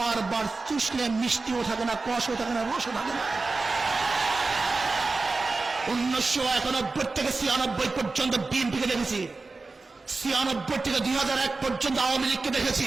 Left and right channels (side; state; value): left; quieter; 3.7 dB